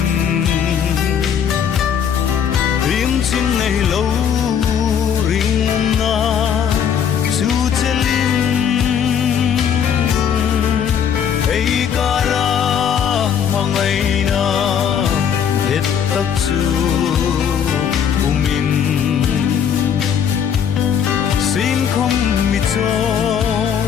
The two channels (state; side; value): quieter; right; 8.1 dB